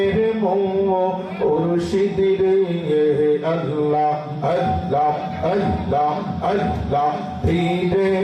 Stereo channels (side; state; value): both; identical; correlation 1.00